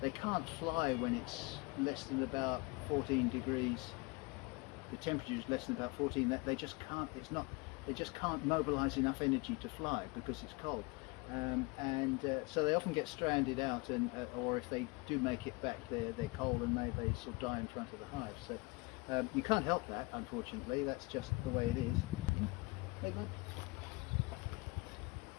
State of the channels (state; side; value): quieter; right; 25.9 dB